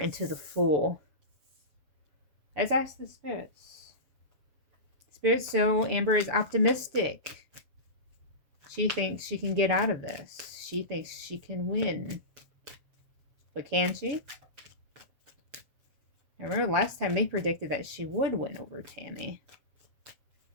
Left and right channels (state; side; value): late; left; 7.0 ms